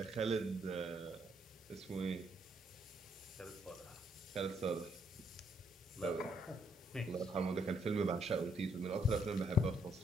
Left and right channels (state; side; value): normal; both; correlation 0.73